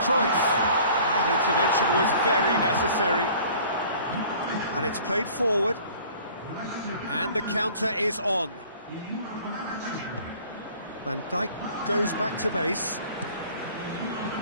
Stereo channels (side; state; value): both; inverted; correlation -0.50